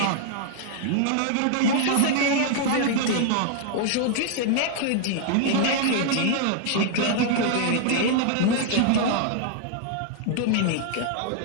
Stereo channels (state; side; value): different; both; correlation 0.00